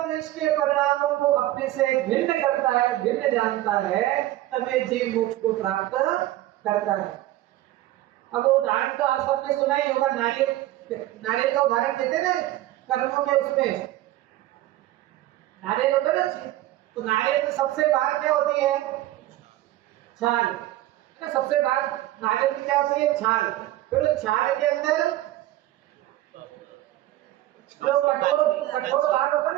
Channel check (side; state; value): left; quieter; 15.5 dB